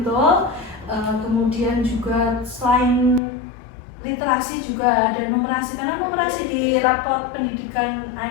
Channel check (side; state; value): right; drops out; at 3.2 s